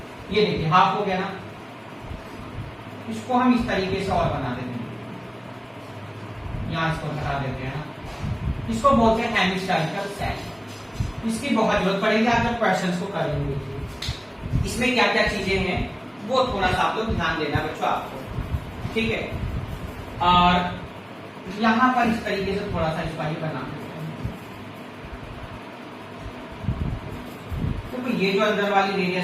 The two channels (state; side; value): identical; both; correlation 1.00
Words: ये देखिए हाफ हो गया ना, इसको हम इस तरीके से और बना देते हैं, यहां इसको हटा देते हैं ना। इसको बोलते हैं हेमिस्फेरिकल सेल। इसकी बहुत जरूरत पड़ेगी आप जब क्वेश्चंस को करेंगे। इसमें क्या क्या चीजें हैं वो थोड़ा सा आप लोग ध्यान देना बच्चों आपको, ठीक है। और यहां पर इस तरीके से थोड़ा सा इसको ही बना देते हैं। तो ये जो अंदर वाली